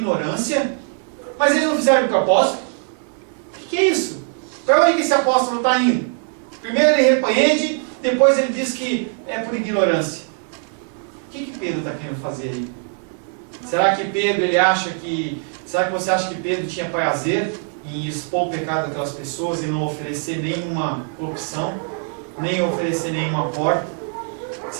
Mas eles não fizeram com o apóstolo? O que é isso? Para onde que esse apóstolo está indo? Primeiro ele repreende, depois ele diz que é por ignorância. O que Pedro está querendo fazer aí? Será que Pedro ele acha que... Será que você acha que Pedro tinha prazer em expor o pecado daquelas pessoas e não oferecer nenhuma opção, nem oferecer nenhuma porta?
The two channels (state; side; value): silent; left; 55 dB below the other